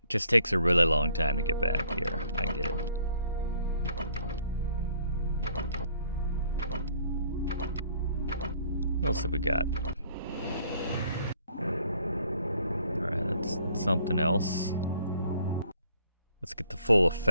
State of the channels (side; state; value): both; inverted; correlation -0.62